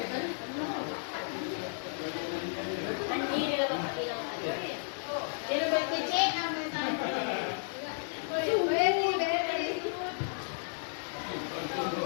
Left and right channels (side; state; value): right; silent; digital silence